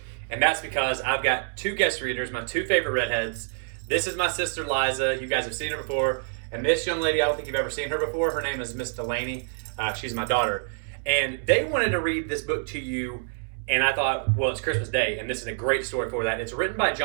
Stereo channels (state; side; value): silent; left; digital silence